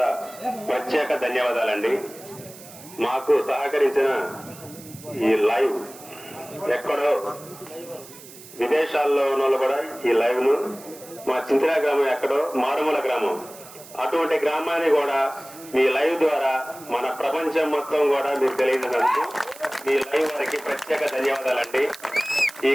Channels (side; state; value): right; noise; hiss, 18 dB below the sound